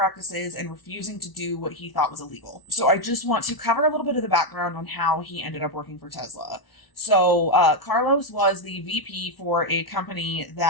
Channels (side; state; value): right; late; 1.0 ms